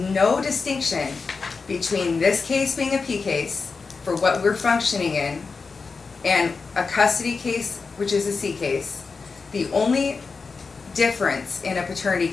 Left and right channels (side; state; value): right; quieter; 4.6 dB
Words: no distinction between this case being a P case, for what we're functioning in, and a custody case, which is a C case. The only difference in a paternity